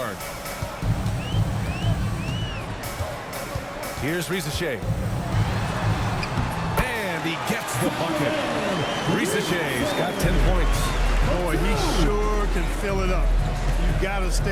Here's Risacher. And he gets the bucket. Risacher's got 10 points. Boy, he sure can fill it up. You got to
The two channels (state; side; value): identical; both; correlation 1.00